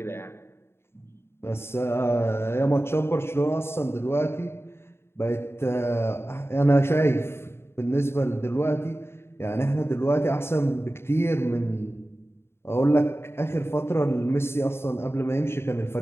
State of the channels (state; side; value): late; right; 0.12 ms